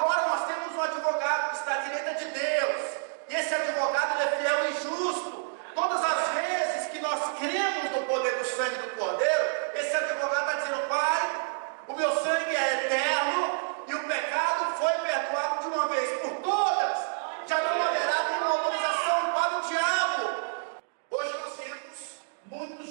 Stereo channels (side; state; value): left; silent; digital silence